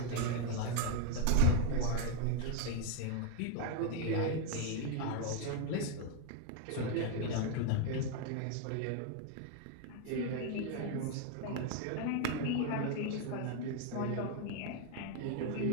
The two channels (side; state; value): both; different; correlation 0.00